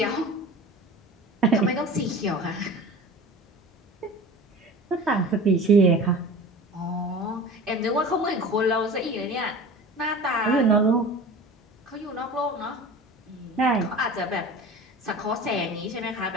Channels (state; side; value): normal; both; correlation 0.37